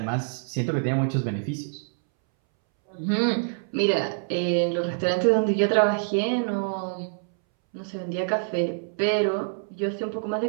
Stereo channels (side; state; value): left; silent; 61 dB below the other